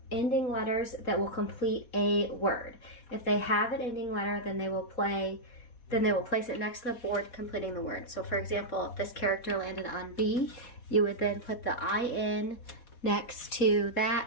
ending letters that will complete a word. If they have an ending letter, then they will place it next to the board completing the word. So for example, if this character landed on B, you would then put the IN next to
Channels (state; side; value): late; right; 4.1 ms